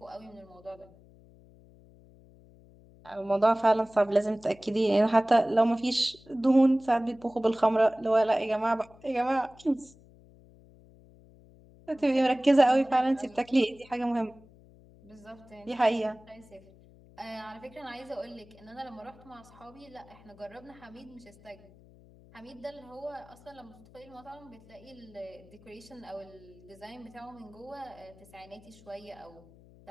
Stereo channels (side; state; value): left; noise; hum, 24 dB below the sound